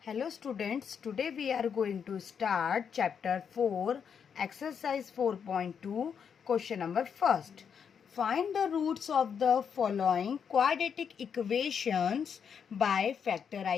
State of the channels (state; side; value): quieter; right; 7.1 dB